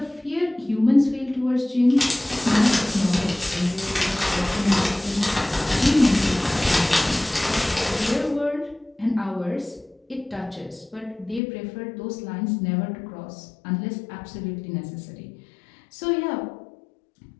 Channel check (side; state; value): right; drops out; at 11.4 s